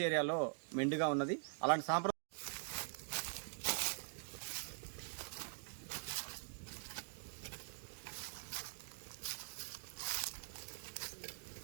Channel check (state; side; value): silent; left; digital silence